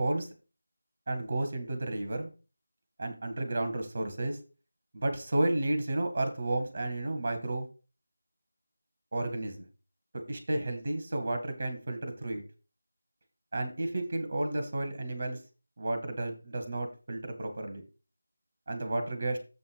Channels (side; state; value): both; inverted; correlation -0.96